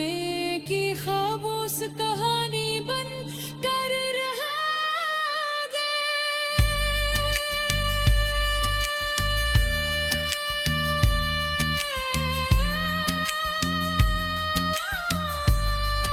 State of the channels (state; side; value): identical; both; correlation 1.00